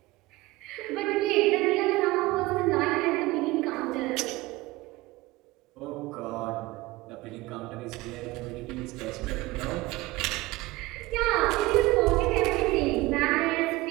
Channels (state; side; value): quieter; left; 20.1 dB